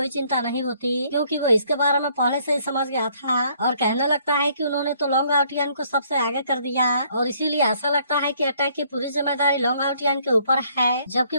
चिंता नहीं होती, क्योंकि वो इसके बारे में पहले से ही समझ गया था और कहने लगता है कि उन्होंने तो लॉन्ग आउटियन को सबसे आगे कर दिया और इसीलिए ऐसा लगता है कि अटैक की पूरी जिम्मेदारी लॉन्ग आउटियन के ऊपर है, जबकि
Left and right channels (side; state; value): both; inverted; correlation -0.65